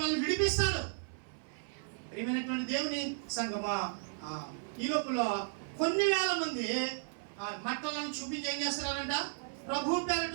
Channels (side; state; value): left; silent; 55 dB below the other